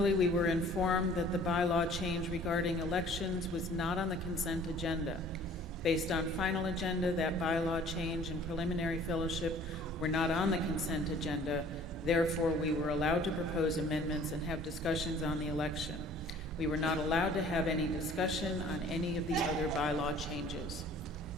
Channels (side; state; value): both; normal; correlation 0.51